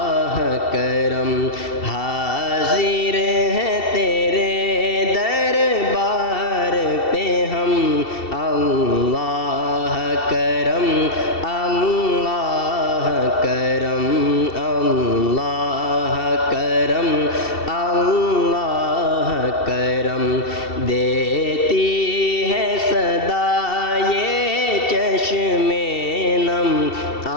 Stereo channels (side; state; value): right; late; 2.7 ms